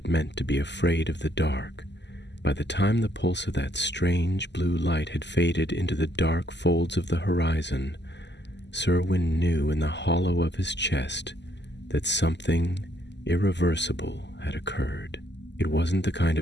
meant to be afraid of the dark. By the time the pulse of that strange blue light had faded into the dark folds of the horizon, Serwyn knew in the hollow of his chest that something irreversible had occurred. It wasn't the kind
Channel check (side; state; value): right; late; 0.51 ms